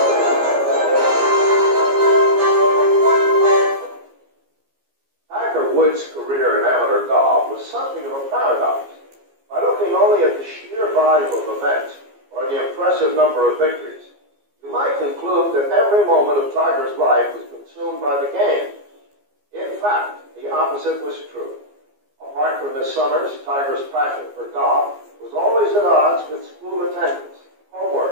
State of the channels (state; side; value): late; left; 14 ms